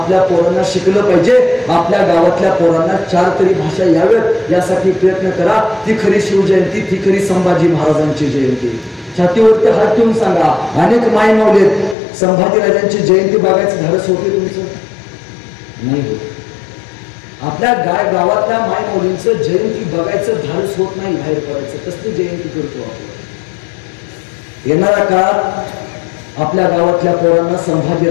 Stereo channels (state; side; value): drops out; right; at 12.0 s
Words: पोरांना शिकलं पाहिजे, आपल्या गावातल्या पोरांना 4 तरी भाषा याव्यात, यासाठी प्रयत्न करा. ती खरी शिवजयंती, ती खरी संभाजी महाराजांची जयंती. छातीवरती हात ठेवून सांगा, अनेक माय माऊलीत संभाजी राजांची जयंती बघायचं धाडस होते तुमचं? नाही होत. आपल्या गावातल्या माय मुलींचं जयंती बघायचं धाडस होत नाही, बाहेर पडायचं. कसली जयंती करतो आपण? येणाऱ्या काळात आपल्या गावातल्या पोरांना संभाजी